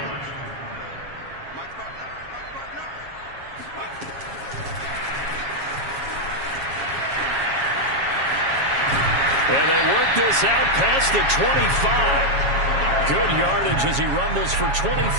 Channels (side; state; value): left; late; 7.3 ms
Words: And they work this out past the 25. Good yardage as he rumbles for